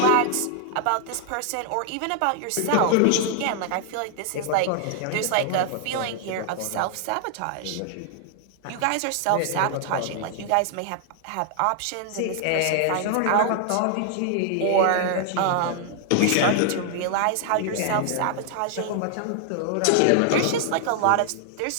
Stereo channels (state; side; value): different; both; correlation 0.00